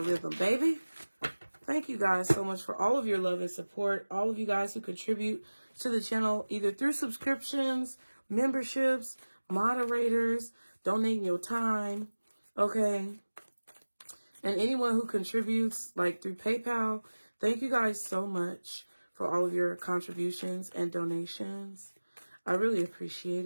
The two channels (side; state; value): both; inverted; correlation -1.00